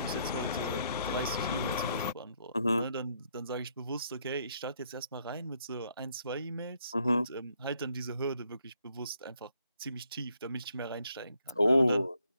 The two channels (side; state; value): both; inverted; correlation -0.72